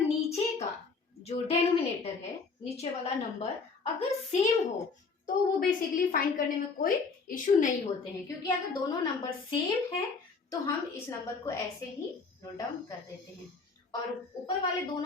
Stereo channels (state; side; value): quieter; right; 4.6 dB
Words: का जो डेनोमिनेटर है, नीचे वाला नंबर अगर सेम हो तो वो बेसिकली फाइंड करने में कोई इश्यू नहीं होते हैं, क्योंकि अगर दोनों नंबर सेम है तो हम इस नंबर को ऐसे ही नोट डाउन कर देते हैं और ऊपर वाले